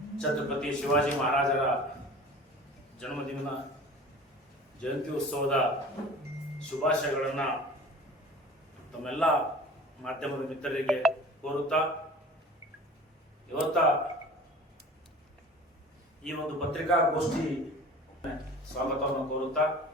ಛತ್ರಪತಿ ಶಿವಾಜಿ ಮಹಾರಾಜರ ಜನ್ಮದಿನ ಜಯಂತಿ ಉತ್ಸವದ ಶುಭಾಶಯಗಳನ್ನು ತಮ್ಮೆಲ್ಲ ಮಾಧ್ಯಮದ ಮಿತ್ರರಿಗೆ ಕೋರುತ್ತಾ ಇವತ್ತ ಈ ಒಂದು ಪತ್ರಿಕಾಗೋಷ್ಠಿ ಸ್ವಾಗತವನ್ನು ಕೋರುತ್ತಾ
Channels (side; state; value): both; normal; correlation 0.42